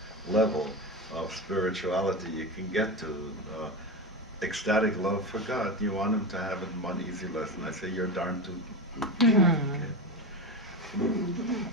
level of spirituality you can get to, ecstatic love for God, you want him to have it in one easy lesson. I say, you're darn tootin'. Okay.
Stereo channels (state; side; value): normal; both; correlation 0.20